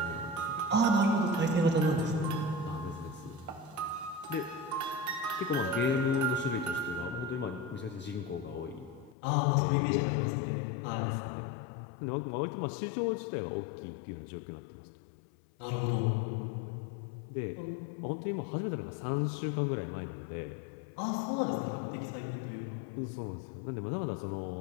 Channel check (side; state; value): right; drops out; at 9.2 s